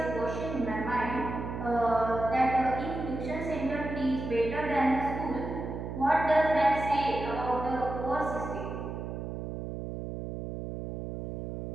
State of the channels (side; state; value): right; noise; hum, 6 dB below the sound